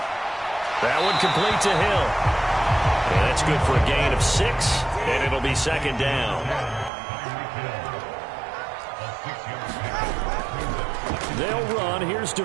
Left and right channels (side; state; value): left; drops out; at 6.9 s